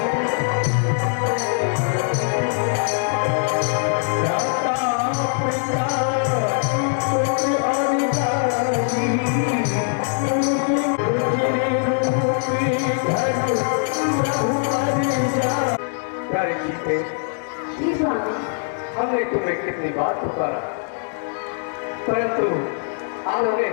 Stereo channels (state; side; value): silent; right; digital silence